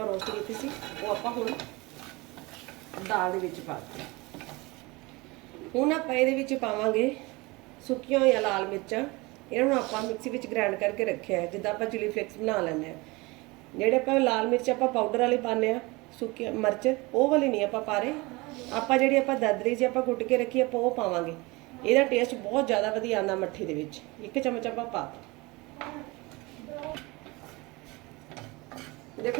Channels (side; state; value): left; quieter; 24.0 dB